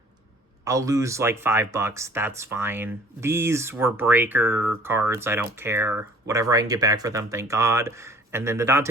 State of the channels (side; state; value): both; normal; correlation 0.51